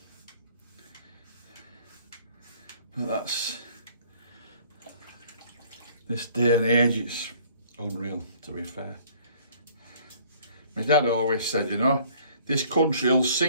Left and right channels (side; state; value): both; inverted; correlation -0.55